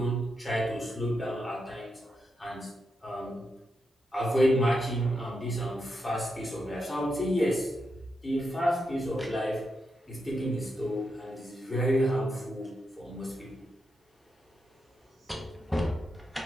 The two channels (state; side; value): normal; both; correlation 0.85